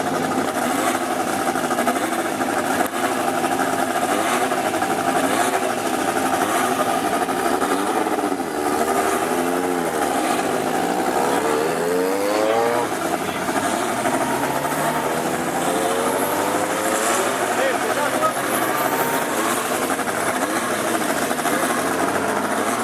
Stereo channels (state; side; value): identical; both; correlation 1.00